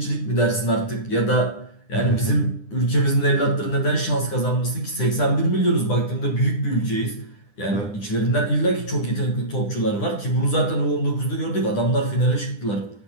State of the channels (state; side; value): late; right; 9.9 ms